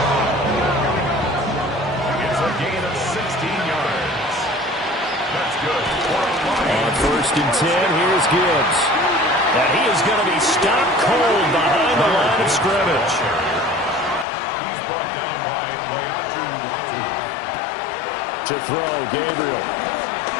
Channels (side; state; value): right; drops out; at 14.2 s